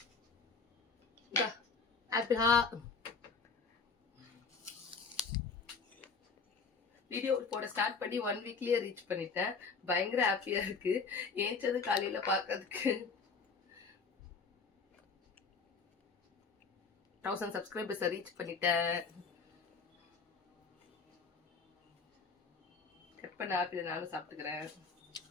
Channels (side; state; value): right; quieter; 4.9 dB